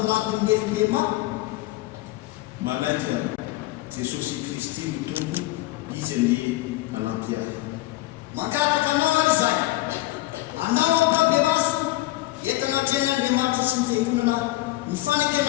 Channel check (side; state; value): right; quieter; 17.8 dB